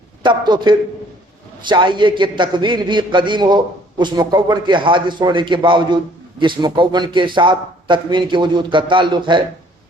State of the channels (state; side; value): normal; both; correlation 0.59